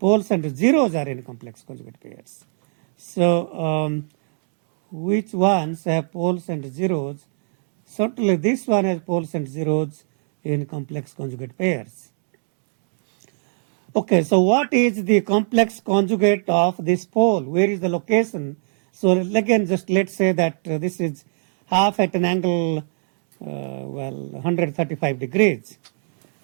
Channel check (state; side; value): silent; left; digital silence